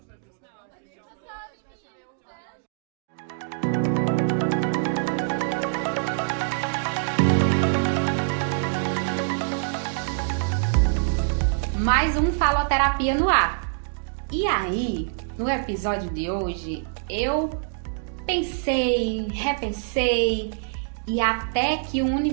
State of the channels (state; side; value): silent; left; digital silence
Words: Mais um Faloterapia no ar. E aí, no episódio de hoje, eu pensei, repensei e até que o